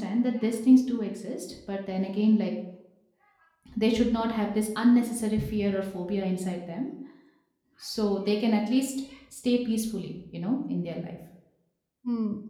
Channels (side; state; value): both; identical; correlation 1.00